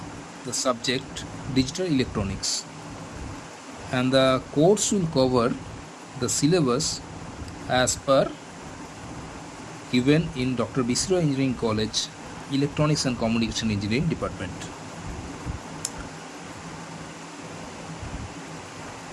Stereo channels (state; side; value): identical; both; correlation 1.00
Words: the subject digital electronics, and the course will cover the syllabus as per given in Dr. Bisra Engineering College Electronics and Communication Engineering Department.